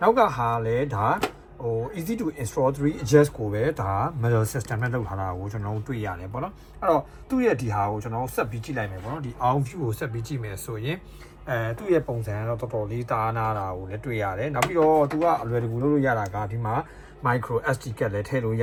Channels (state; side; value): identical; both; correlation 1.00